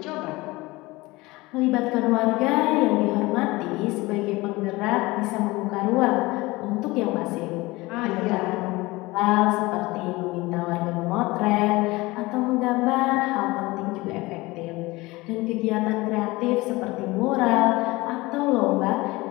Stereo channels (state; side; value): quieter; right; 21.4 dB